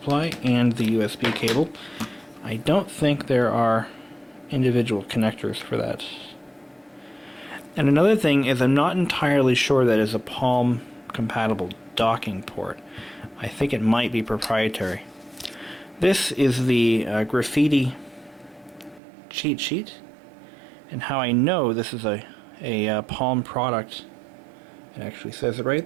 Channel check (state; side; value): drops out; left; at 19.0 s